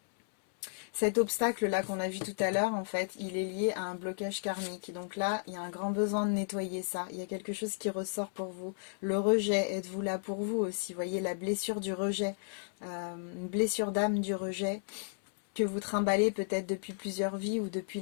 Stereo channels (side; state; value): right; silent; 55 dB below the other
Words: Cet obstacle-là qu'on a vu tout à l'heure, en fait, il est lié à un blocage karmique. Donc là, il y a un grand besoin de nettoyer ça. Il y a quelque chose qui ressort pour vous. Le rejet, êtes-vous là pour vous aussi? Vous voyez, la blessure du rejet, une blessure d'âme du rejet que vous trimballez peut-être depuis plusieurs vies ou depuis